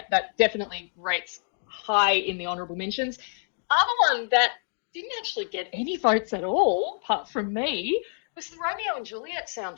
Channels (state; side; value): silent; right; 57 dB below the other